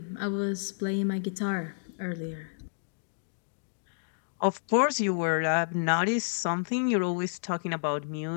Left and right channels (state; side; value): silent; right; digital silence